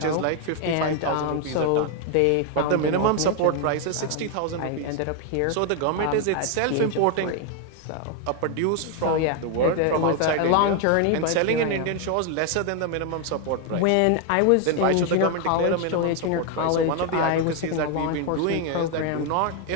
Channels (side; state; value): both; different; correlation 0.01